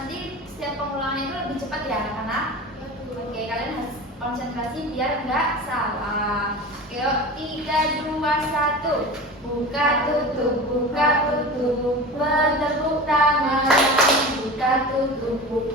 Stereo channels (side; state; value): both; normal; correlation 0.32